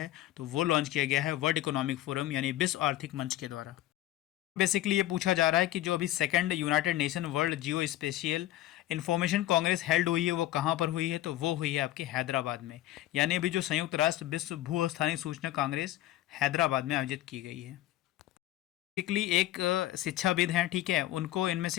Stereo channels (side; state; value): right; quieter; 14.4 dB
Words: तो वो लॉन्च किया गया है वर्ल्ड इकोनॉमिक फोरम यानी विश्व आर्थिक मंच के द्वारा। बेसिकली ये पूछा जा रहा है कि जो अभी सेकंड यूनाइटेड नेशन वर्ल्ड जियो स्पेशियल इंफॉर्मेशन कांग्रेस हेल्ड हुई है वो कहाँ पर हुई है, तो वो हुई है आपकी हैदराबाद में। यानी अभी जो संयुक्त राष्ट्र विश्व भू स्थानीय सूचना कांग्रेस हैदराबाद में आयोजित की गई है। बेसिकली एक शिक्षाविद हैं, ठीक है, उनको इनमें